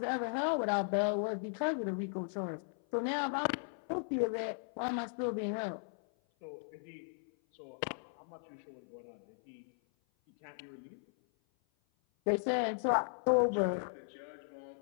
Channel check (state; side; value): silent; right; 53 dB below the other